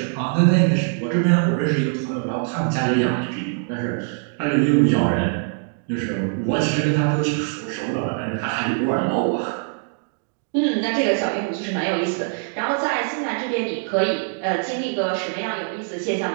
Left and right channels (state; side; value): silent; left; 57 dB below the other